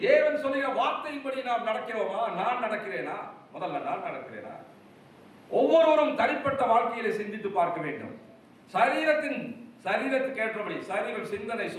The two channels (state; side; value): identical; both; correlation 1.00